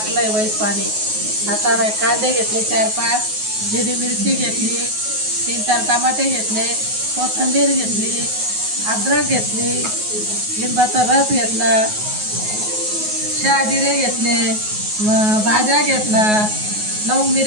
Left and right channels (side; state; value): left; late; 9.4 ms